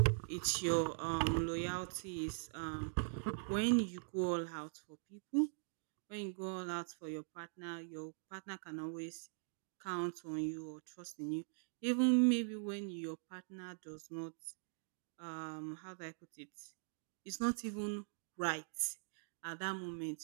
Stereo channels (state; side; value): silent; left; digital silence